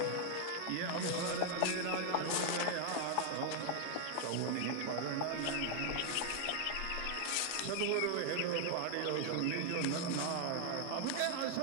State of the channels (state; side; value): different; both; correlation 0.00